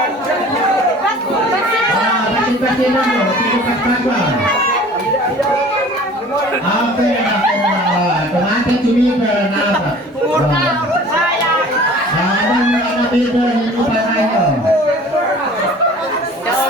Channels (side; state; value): both; normal; correlation 0.46